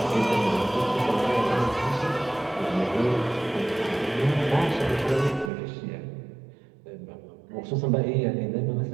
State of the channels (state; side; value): drops out; left; at 5.5 s